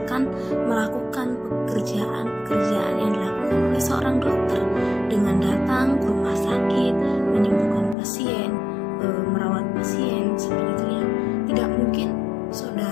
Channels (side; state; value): right; drops out; at 8.0 s